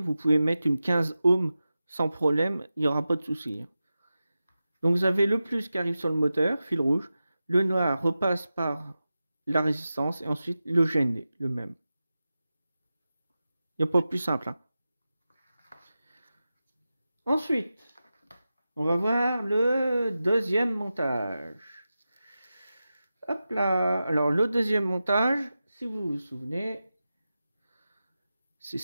pouvez mettre une 15 ohms sans problème, il n'y aura pas de souci. Donc, vous avez le plus qui arrive sur le moteur, fil rouge. Le noir repasse par la résistance et ensuite le GND, le même. Il n'y a pas plus simple. Hein. Ensuite, on va voir le deuxième montage. Hop là. Alors, le deuxième montage, si vous vous souvenez, c'est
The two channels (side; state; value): both; inverted; correlation -0.93